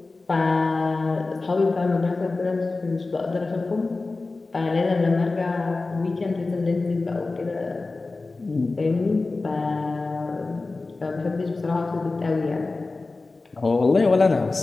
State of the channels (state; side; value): quieter; right; 3.5 dB